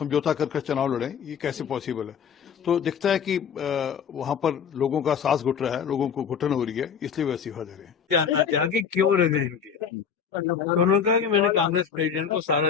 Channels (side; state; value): right; quieter; 7.2 dB